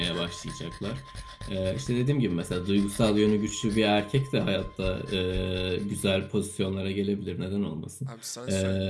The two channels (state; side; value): identical; both; correlation 1.00